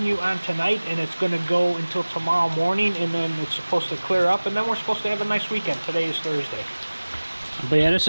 on tonight, and it's going to go until tomorrow morning, and then it's supposed to clear up, and then we're supposed to have a nice weekend. Today is Thursday. But yeah, this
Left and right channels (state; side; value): inverted; both; correlation -1.00